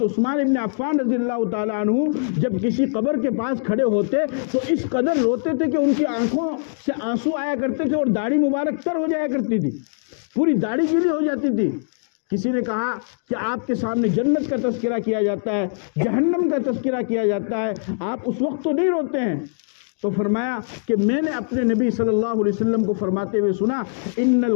عثمان ابن عفان رضی اللہ تعالیٰ عنہ جب کسی قبر کے پاس کھڑے ہوتے تو اس قدر روتے تھے کہ ان کی آنکھوں سے آنسو آیا کرتے تھے اور داڑھی مبارک تر ہو جایا کرتی تھی، پوری داڑھی گیلی ہو جاتی تھی۔ کسی نے کہا کہ آپ کے سامنے جنت کا تذکرہ کیا جاتا ہے، جہنم کا تذکرہ کیا جاتا ہے، آپ اس وقت تو نہیں روتے ہیں؟ تو فرمایا کہ میں نے اپنے نبی صلی اللہ علیہ وسلم کو فرماتے ہوئے سنا، ان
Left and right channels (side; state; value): right; silent; digital silence